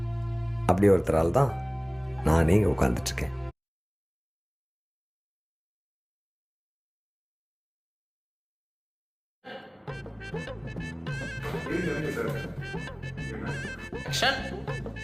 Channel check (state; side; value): identical; both; correlation 1.00